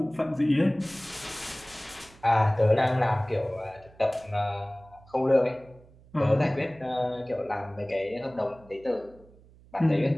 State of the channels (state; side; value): noise; right; hum, 25 dB below the sound